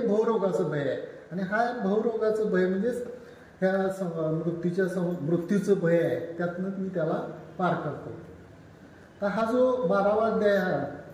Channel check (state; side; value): identical; both; correlation 1.00